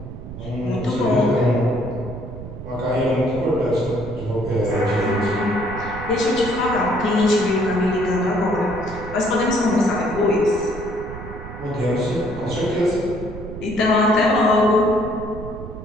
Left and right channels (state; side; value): noise; right; rumble, 11 dB below the sound